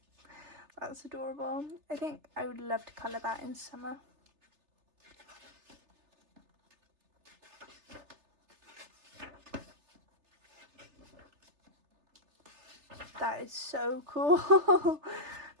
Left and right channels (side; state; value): left; late; 3.3 ms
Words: That's adorable. I think I would love to colour that in summer. That is so cool.